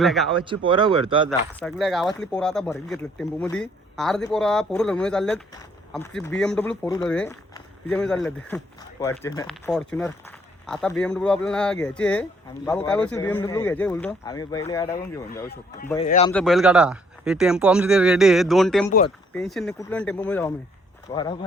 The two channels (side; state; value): both; normal; correlation 0.64